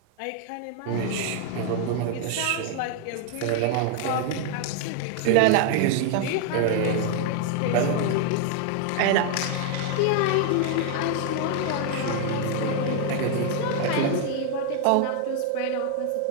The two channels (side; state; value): both; different; correlation 0.00